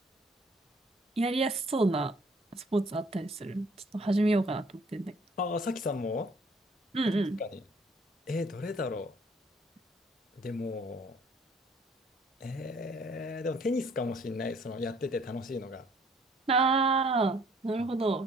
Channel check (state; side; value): normal; both; correlation 0.60